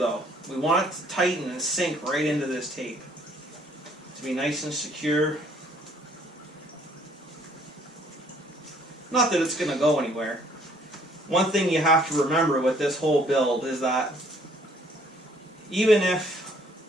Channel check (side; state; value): both; normal; correlation 0.62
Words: we want it to tighten and sink right into this tape to be nice and secure. Not that it's going to go anywhere. One thing you have to remember with this whole build is that even if